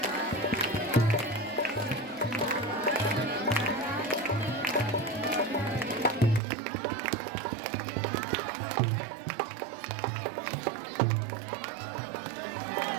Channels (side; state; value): left; drops out; at 6.4 s